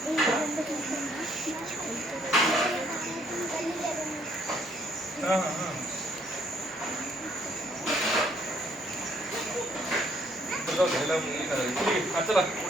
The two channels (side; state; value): both; normal; correlation 0.67